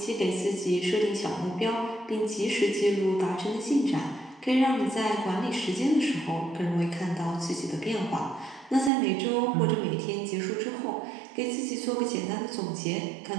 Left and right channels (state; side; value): drops out; left; at 8.9 s